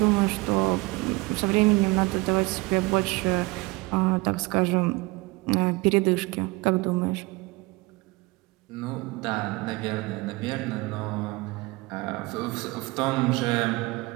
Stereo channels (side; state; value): left; quieter; 23.4 dB